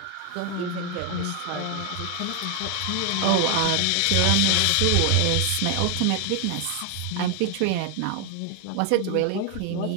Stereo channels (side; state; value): both; different; correlation 0.00